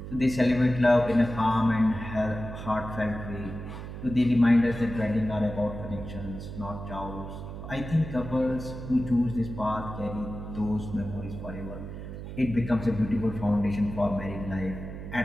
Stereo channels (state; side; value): noise; right; hum, 9 dB below the sound